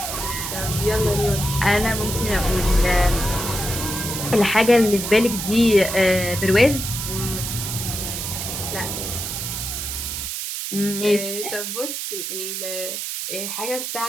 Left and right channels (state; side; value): noise; right; hiss, 4 dB below the sound